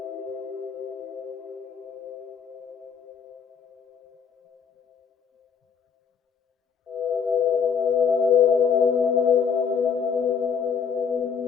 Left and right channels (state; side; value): quieter; right; 6.6 dB